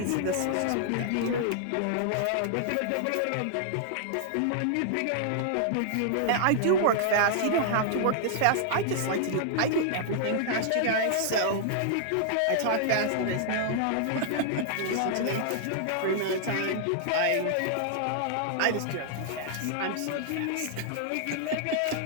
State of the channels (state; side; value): different; both; correlation -0.01